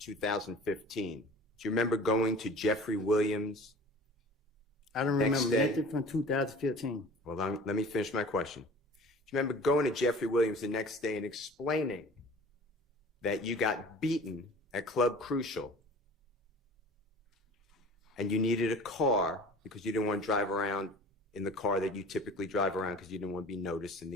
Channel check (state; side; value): normal; both; correlation 0.43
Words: do you remember going to Jeffrey Williams? I don't Next remember day? nothing from 2015. Well, let me finish my question. Do you remember going to Jeffrey Williams the next day and explaining that you got beaten at Club Crucial and you needed a car because you didn't want to drive around in the car that you typically drive around because you didn't want to be noticed in